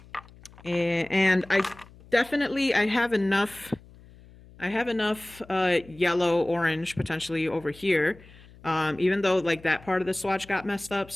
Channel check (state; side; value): noise; left; hum, 23 dB below the sound